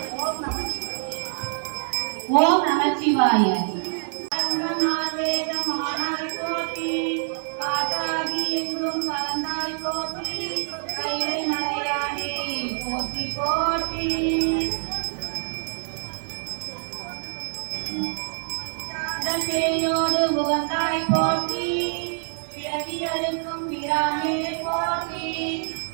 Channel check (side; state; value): left; silent; 61 dB below the other